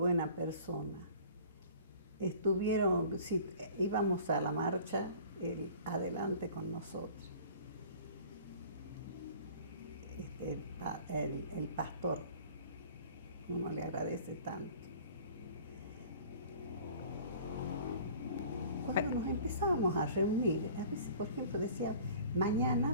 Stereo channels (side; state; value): both; inverted; correlation -0.47